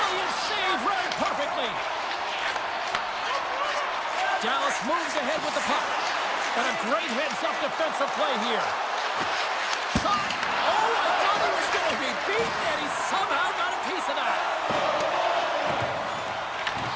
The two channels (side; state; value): both; identical; correlation 1.00